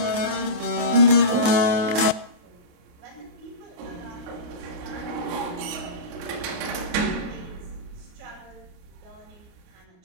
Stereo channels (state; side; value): late; left; 28 ms